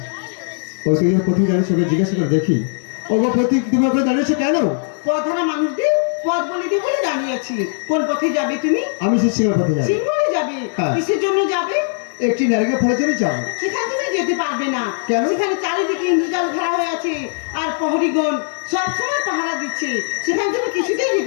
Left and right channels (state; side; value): silent; right; digital silence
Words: ওই তুমি প্রতীক দাঁড়িয়েছে, ওকে জিজ্ঞাসা করে দেখি। ও বা প্রতীক তুমি ওখানে দাঁড়িয়েছো কেন? পথহারা মানুষদের পথ বলে দিই বলে দাঁড়িয়ে আছি। কোন পথে যাবে তুমি? আমি সে সিংহ পথে যাবো। সিংহলে যাবে? হ্যাঁ। কিসের জন্য যাবে? একটি নারীকে ফলের জন্য যাবো। সেখানে তুমি যেতে পারবে না। কেন? সেখানে চারিদিকে ইন্দ্রজাল ঘেরা হয়ে আছে, আর প্রহরীগণ সবসময় পাহারা দিচ্ছে। সেখানে তুমি কিছুতেই